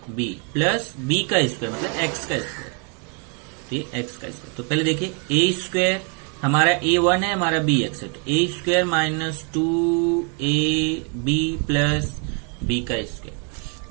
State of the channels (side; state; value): left; quieter; 34.9 dB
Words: प्लस b का स्क्वायर मतलब x का स्क्वायर, ठीक x का स्क्वायर। तो पहले देखिए a स्क्वायर हमारा a1 है, हमारा b x है, तो a square minus 2ab plus b का स्क्वायर।